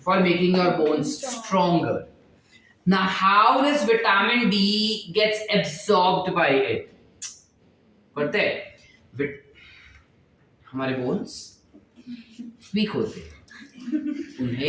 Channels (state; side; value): identical; both; correlation 1.00